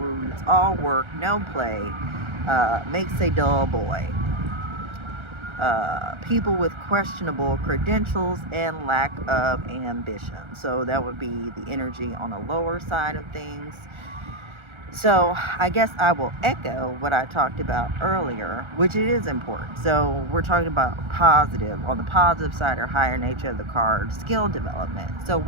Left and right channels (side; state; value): left; late; 1.3 ms